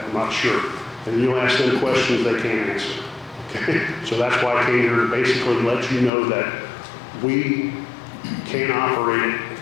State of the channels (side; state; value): right; drops out; at 6.1 s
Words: I'm not sure. And you'll ask them questions they can't answer. Okay? So that's why I came here to basically let you know that we can't operate it